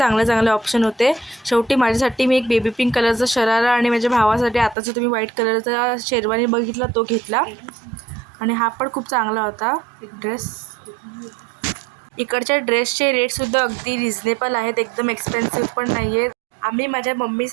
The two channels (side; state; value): left; drops out; at 4.8 s